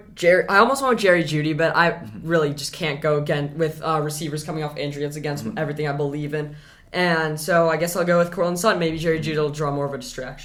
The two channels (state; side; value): identical; both; correlation 1.00